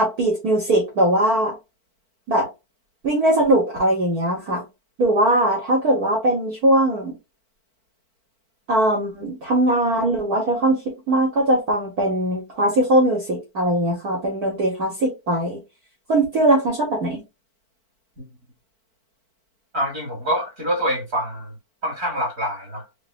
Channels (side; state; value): left; late; 4.5 ms